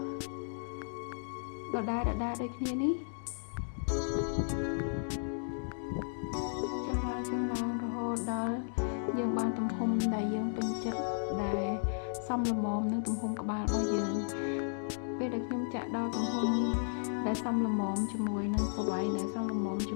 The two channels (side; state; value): right; silent; digital silence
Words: ដដែលដូចគ្នានេះចុះឡើងរហូតដល់យើងបានទំហំដែលយើងពេញចិត្តដែលសមល្មមនឹងទំហំក្បាលរបស់យើងពេលដែលខ្ញុំចាក់ដល់ទំហំដែលសមល្មមជាមួយនឹងប្រវែងដែលសមល្មមជា